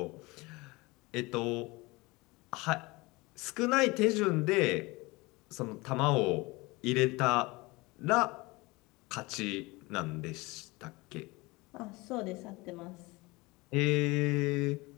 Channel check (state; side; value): quieter; right; 23.4 dB